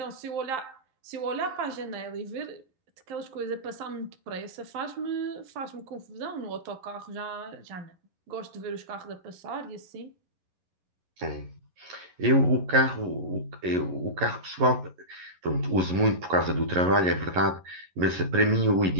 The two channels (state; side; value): late; left; 11 ms